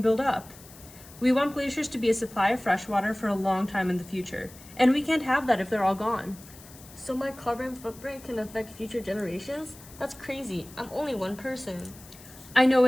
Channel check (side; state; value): left; noise; hiss, 20 dB below the sound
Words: build up. We want glaciers to be a supply of fresh water for a long time in the future, and we can't have that if they're all gone. So my carbon footprint can affect future generations? That's crazy. I'm only one person. I know